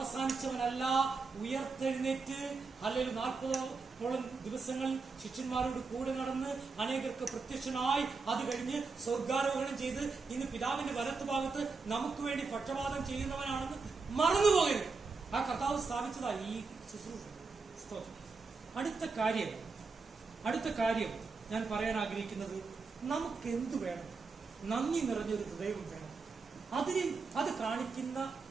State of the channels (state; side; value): quieter; left; 4.4 dB